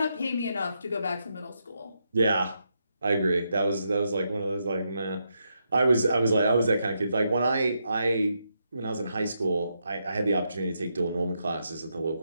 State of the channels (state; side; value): inverted; both; correlation -0.82